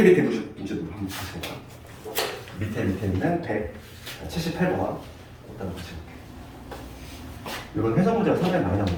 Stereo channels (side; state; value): both; identical; correlation 1.00